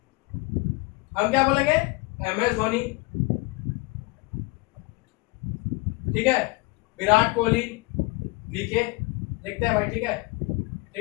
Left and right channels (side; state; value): right; quieter; 24.1 dB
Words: हम क्या बोलेंगे एम एस धोनी, ठीक है, विराट कोहली, वीके लिखते हैं भाई, ठीक है,